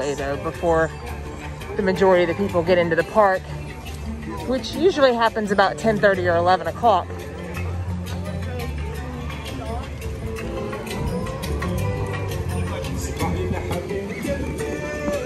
though before the majority of the people get into the park, which usually happens about 10:30 or 11 o'clock.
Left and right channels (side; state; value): both; identical; correlation 1.00